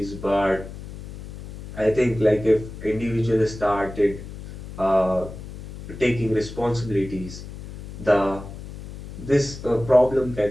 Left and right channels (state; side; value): noise; left; hum, 12 dB below the sound